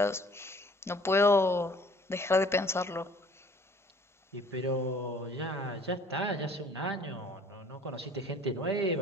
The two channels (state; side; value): normal; both; correlation 0.53